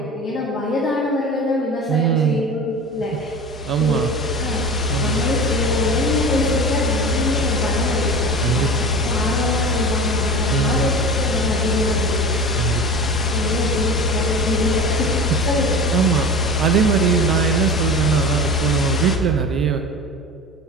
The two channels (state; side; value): normal; both; correlation 0.32